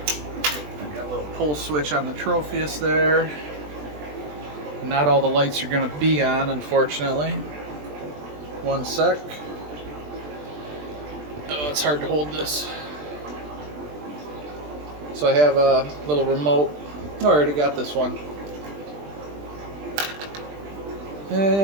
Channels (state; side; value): late; left; 20 ms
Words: I got a little pull switch on the Tropheus there. Not all the lights are going to be on, unfortunately. One sec. Oh, it's hard to hold this. So I have a little remote. Oh, I already got this one.